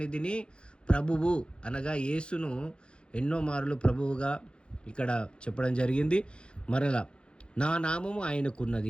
ప్రభువు అనగా యేసును ఎన్నో మార్లు ప్రభువుగా ఇక్కడ చెప్పడం జరిగింది. మరలా నా నామము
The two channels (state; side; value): late; right; 0.055 ms